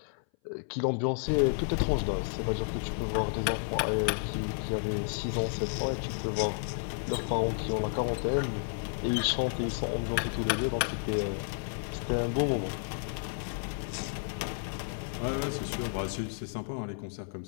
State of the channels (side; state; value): right; silent; 57 dB below the other